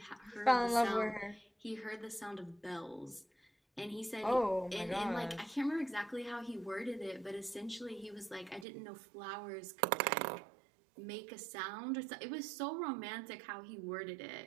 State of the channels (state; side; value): drops out; left; at 8.7 s